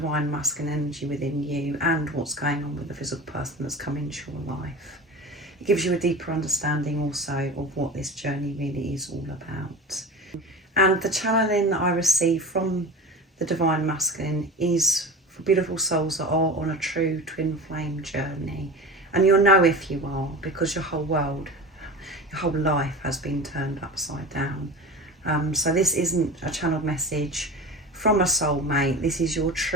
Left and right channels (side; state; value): both; normal; correlation 0.32